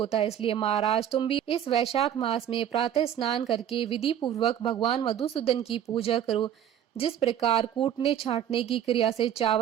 है। इसलिए महाराज, तुम भी इस वैशाख मास में प्रातः स्नान करके विधि पूर्वक भगवान मधुसूदन की पूजा करो। जिस प्रकार कूटने छांटने की क्रिया से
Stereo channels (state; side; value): quieter; left; 10.1 dB